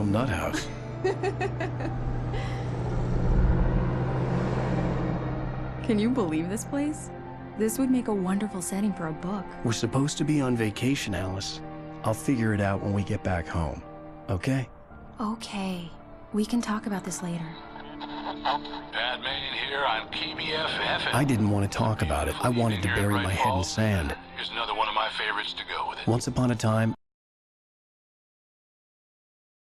nut house. Can you believe this place? This would make a wonderful setting for a book. We're supposed to be on vacation, Alice. I'll figure it out when we get back home, okay? Okay. We can talk about this later. Batman here on PBFF. I didn't want to talk about it. I wanted to bury my head in sand. Here's another one of my favorites to go with it. Once upon a time,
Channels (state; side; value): identical; both; correlation 1.00